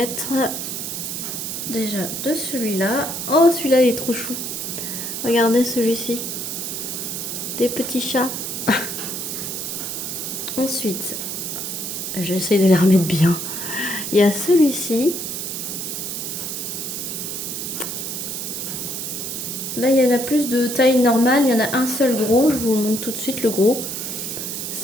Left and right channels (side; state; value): right; noise; hiss, 4 dB below the sound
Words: déjà de celui-là. Oh, celui-là, il est trop chou. Regardez celui-ci. Des petits chats. Ensuite, j'essaye de les remettre bien. Il y a celui-ci. Là, il y en a plus de taille normale. Il y en a un seul gros. Je vous montre tout de suite le gros.